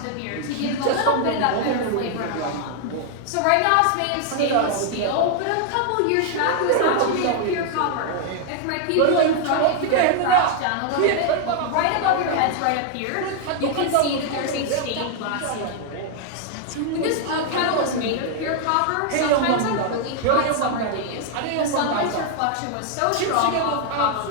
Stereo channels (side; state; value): both; different; correlation 0.00